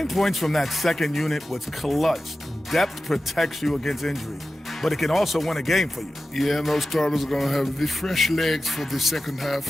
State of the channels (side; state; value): both; normal; correlation 0.95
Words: points from that second unit was clutch. Depth protects you against injury, but it can also win a game for you. Yeah, and those starters are going to have the fresh legs for the second